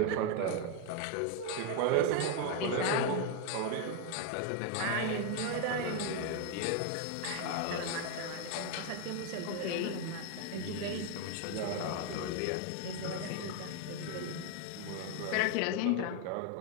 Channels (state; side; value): different; both; correlation 0.01